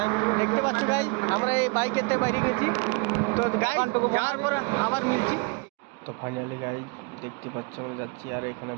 দেখতে পাচ্ছ গাইজ আমরা এই বাইকেতে বাইরে গেছি। তো গাইজ যাওয়ার পর আবার মিলছি। তো ফাইনালি গাইজ দেখতে পাচ্ছ আমরা যাচ্ছি, আর এখানে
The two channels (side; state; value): left; quieter; 30.6 dB